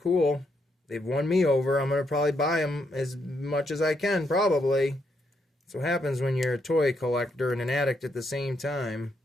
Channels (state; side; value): normal; both; correlation 0.77